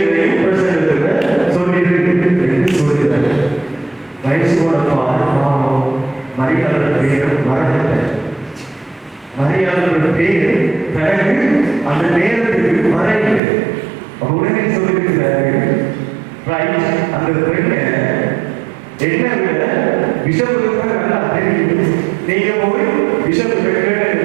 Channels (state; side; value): drops out; left; at 13.4 s